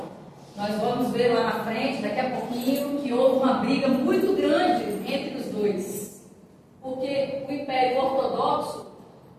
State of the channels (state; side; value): identical; both; correlation 1.00